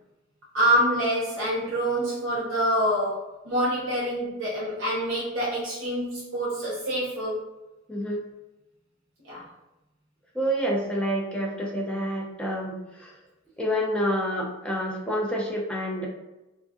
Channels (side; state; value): both; normal; correlation 0.14